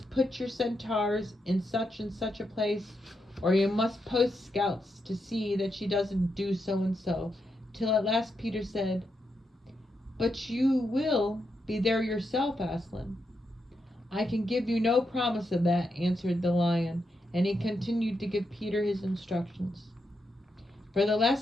put your centaurs in such and such a place, or you must post scouts to see that she doesn't do so and so, till at last Peter said, but you will be there yourself, Aslan. I can give you no promise of that, answered the lion, and he continued to give Peter his instructions. For the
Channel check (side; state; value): both; normal; correlation 0.83